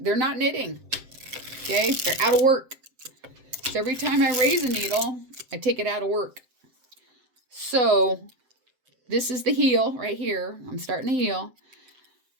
not knitting, okay? They're out of work. So every time I raise a needle, I take it out of work. So this is the heel right here. I'm starting the heel.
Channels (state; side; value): late; left; 7.7 ms